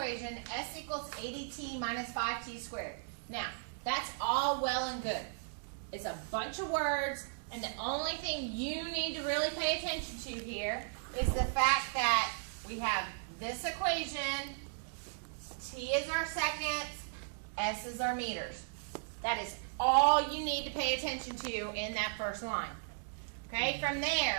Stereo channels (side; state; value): left; silent; digital silence